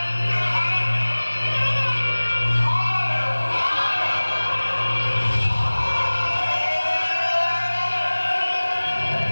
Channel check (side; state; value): both; inverted; correlation -1.00